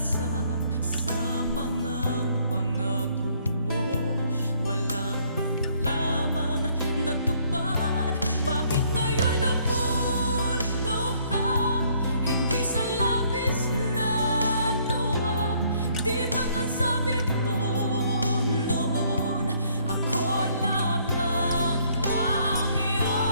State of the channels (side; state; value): both; inverted; correlation -0.65